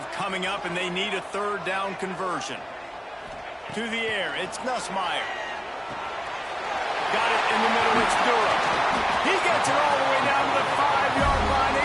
coming up, and they need a 3rd down conversion. To the air, it's Nussmeier. Got it in the middle, it's Durham. He gets it all the way down to the 5-yard line.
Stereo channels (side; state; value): both; identical; correlation 1.00